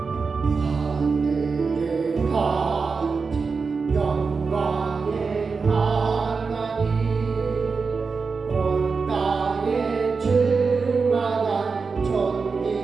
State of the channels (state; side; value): quieter; left; 4.8 dB